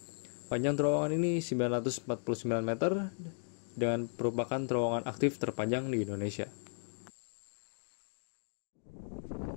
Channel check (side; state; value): right; silent; digital silence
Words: Panjang terowongan ini 949 meter dan merupakan terowongan aktif terpanjang di Indonesia.